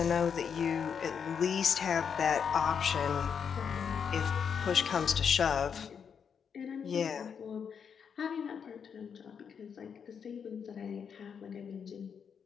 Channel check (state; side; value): quieter; right; 7.0 dB